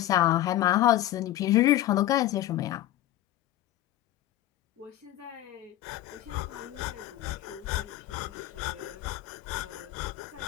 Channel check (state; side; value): quieter; right; 14.1 dB